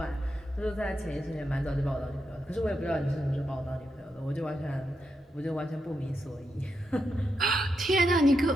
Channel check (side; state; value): both; normal; correlation 0.84